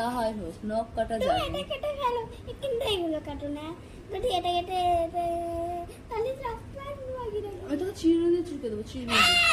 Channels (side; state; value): both; identical; correlation 1.00